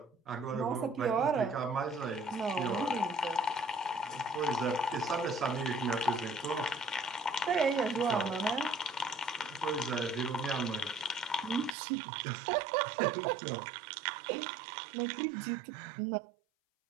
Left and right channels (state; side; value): drops out; left; at 11.8 s